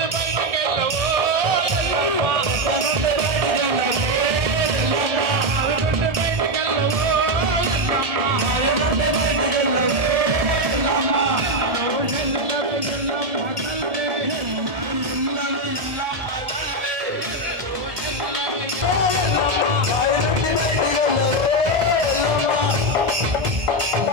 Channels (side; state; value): left; late; 1.7 ms